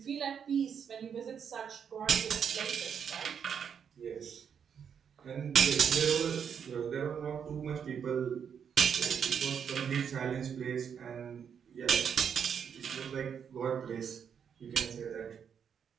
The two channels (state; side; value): quieter; left; 7.5 dB